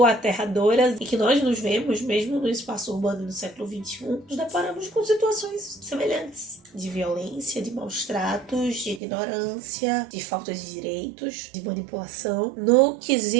aterradoras e que nós nos vemos, mesmo no espaço urbano do século XXI, nos deparamos com situações semelhantes. De violência, de maus tratos, de ignorância, de falta de direitos, de manipulação. No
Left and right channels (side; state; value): left; drops out; at 9.0 s